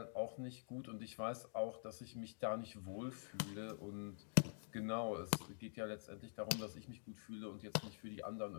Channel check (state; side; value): silent; right; digital silence